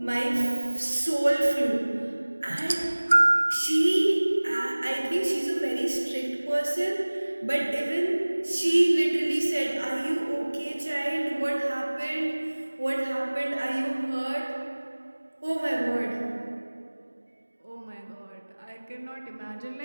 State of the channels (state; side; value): inverted; both; correlation -1.00